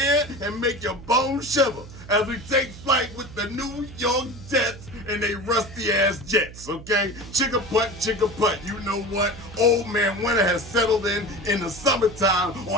and make your bones shiver as we take flight with the New York Jets and they rusty-ass Jets, okay? Chicka putt, you know what? Old man winter has settled in the summertime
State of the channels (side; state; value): right; noise; hum, 16 dB below the sound